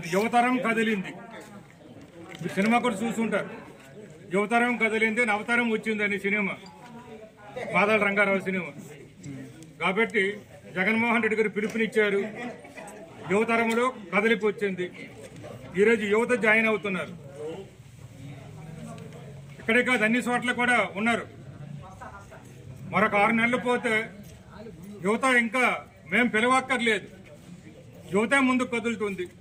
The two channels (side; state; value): both; identical; correlation 1.00